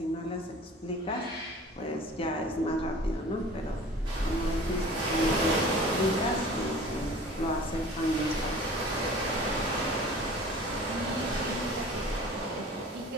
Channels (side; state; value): both; normal; correlation 0.44